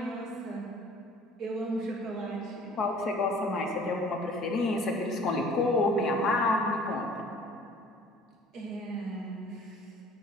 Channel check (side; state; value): both; normal; correlation 0.50